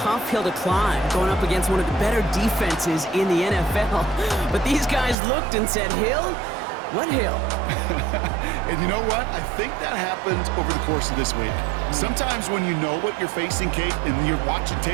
hill to climb, going up against one of the better defenses in the NFL. But these guys looked and said, Hill? What hill? And you know what? I think that happened over the course of this week. Sometimes when you know what you're facing, Kate, and you're watching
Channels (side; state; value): left; drops out; at 5.2 s